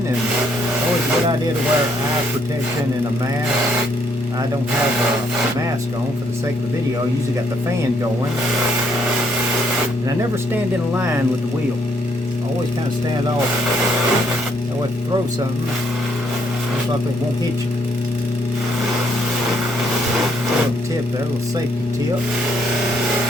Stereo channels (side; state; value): both; normal; correlation 0.70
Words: and always a good idea to wear eye protection and a mask. I don't have a mask on for the sake of the video. I usually got the fan going. And I never stand in a line with the wheel. I always kind of stand off. That way if you throw something, most likely it won't hit you. A little tip there, a little safety tip.